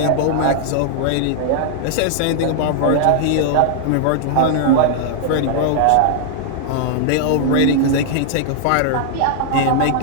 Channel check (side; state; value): both; different; correlation -0.01